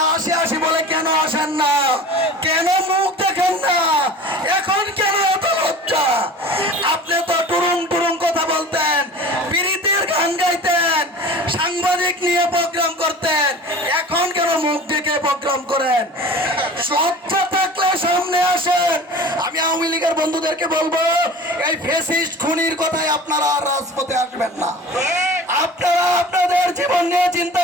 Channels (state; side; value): normal; both; correlation 0.40